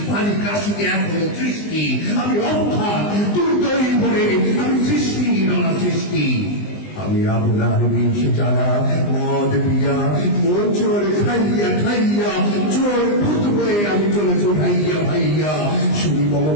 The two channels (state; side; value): late; right; 20 ms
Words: পানি কাশিতে এখনো সৃষ্টি। আমি অর্থাৎ দুর্দয়ী ভরে আমি সৃষ্টি নানা সৃষ্টি। আমি আপনার বিষ জ্বালা মদ পিয়া মোচর খাইয়া খাইয়া চোর ভূত হয়ে আমি চলেছি ভাইয়া ভাইয়া। শুনি মম